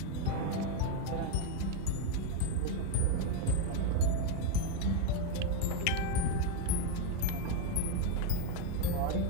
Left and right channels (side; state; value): both; different; correlation 0.02